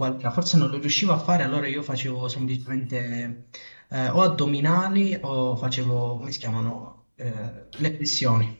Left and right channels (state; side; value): inverted; both; correlation -1.00